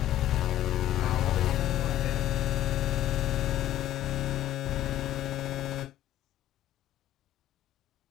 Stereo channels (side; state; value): right; quieter; 12.8 dB